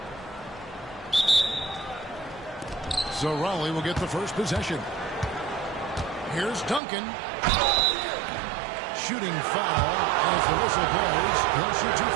So Raleigh will get the first possession. Here's Duncan. Shooting foul as the whistle blows. He'll shoot 2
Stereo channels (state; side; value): drops out; left; at 6.8 s